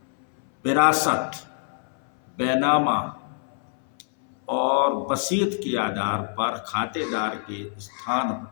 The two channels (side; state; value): right; silent; 60 dB below the other